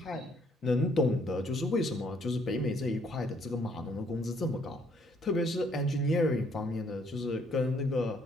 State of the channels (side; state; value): both; normal; correlation 0.66